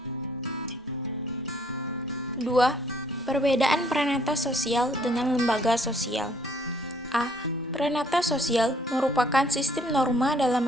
2. Perbedaan pranata sosial dengan lembaga sosial. A. Pranata sosial merupakan sistem norma dalam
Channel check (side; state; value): both; normal; correlation 0.63